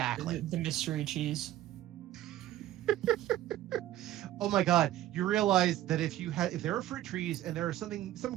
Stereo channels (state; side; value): quieter; left; 13.7 dB